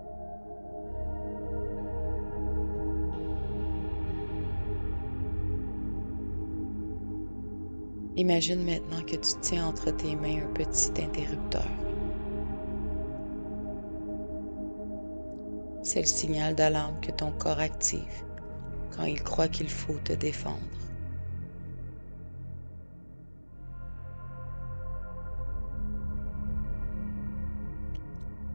Imagine maintenant que tu tiens entre tes mains un petit interrupteur. C'est le signal d'alarme que ton corps active quand il croit qu'il faut te défendre.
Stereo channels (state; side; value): inverted; both; correlation -1.00